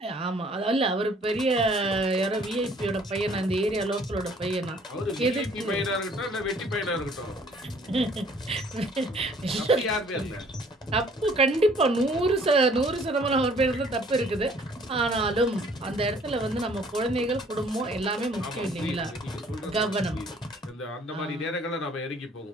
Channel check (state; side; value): normal; both; correlation 0.58